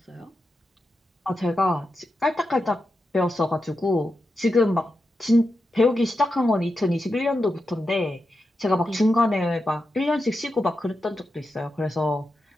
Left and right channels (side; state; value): both; normal; correlation 0.88